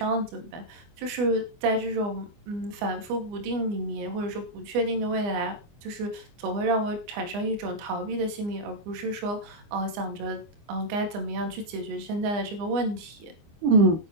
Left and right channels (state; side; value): late; left; 24 ms